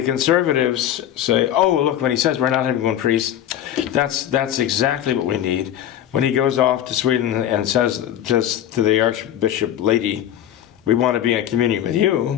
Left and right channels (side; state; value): right; quieter; 11.2 dB